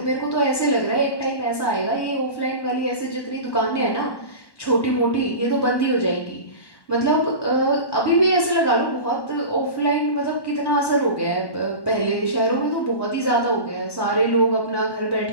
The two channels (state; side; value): late; right; 1.1 ms